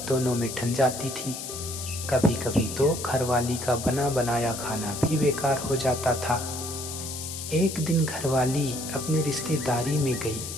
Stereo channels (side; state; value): left; noise; hiss, 8 dB below the sound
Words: दोनों में ठन जाती थी। कभी कभी तो घरवाली का बना बनाया खाना भी बेकार हो जाता था। एक दिन घरवाली अपनी रिश्तेदारी में गई।